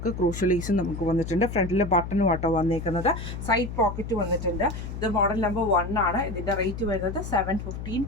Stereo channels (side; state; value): left; noise; hum, 7 dB below the sound